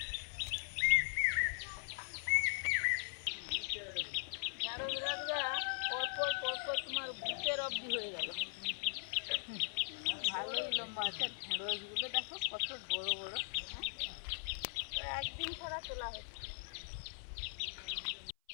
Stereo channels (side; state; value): right; silent; 51 dB below the other